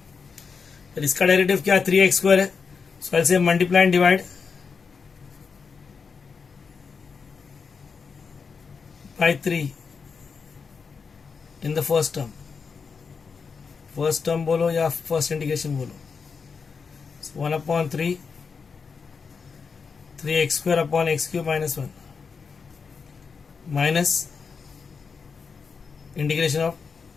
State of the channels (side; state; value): right; quieter; 5.4 dB